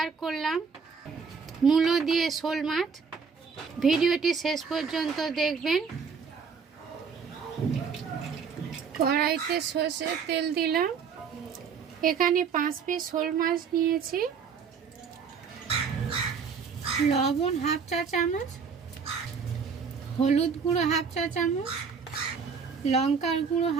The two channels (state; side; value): quieter; left; 5.9 dB